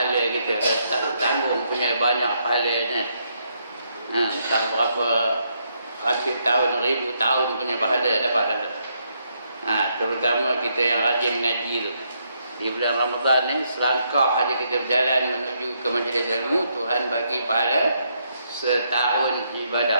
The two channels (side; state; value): both; inverted; correlation -0.76